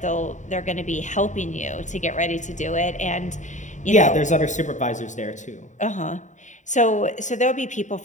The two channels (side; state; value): right; late; 0.35 ms